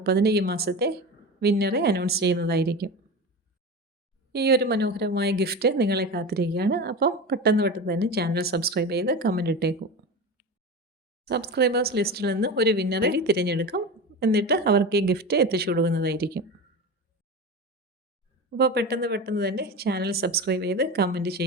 ഈ മാസത്തെ വിന്നറെ അനൗൺസ് ചെയ്യുന്നതായിരിക്കും. ഈ ഒരു മനോഹരമായ ഗിഫ്റ്റ് നിങ്ങളെ കാത്തിരിക്കുകയാണ്. അപ്പം പെട്ടെന്ന് തന്നെ ചാനൽ സബ്സ്ക്രൈബ് ചെയ്ത് കമൻറ്റ് ഇട്ടേക്കും. സബ്സ്ക്രൈബേഴ്സ് ലിസ്റ്റിൽ നിന്ന് ഒരു വിന്നറെ തിരഞ്ഞെടുക്കും. എന്നിട്ട് അവർക്ക് ഈ ഗിഫ്റ്റ് എത്തിച്ചു കൊടുക്കുന്നതായിരിക്കും. അപ്പോൾ പെട്ടെന്ന് തന്നെ ചാനൽ സബ്സ്ക്രൈബ് ചെയ്ത് കമൻറ്റ്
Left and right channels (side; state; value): both; normal; correlation 0.26